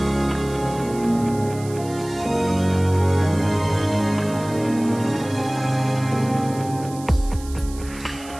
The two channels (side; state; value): right; noise; hiss, 18 dB below the sound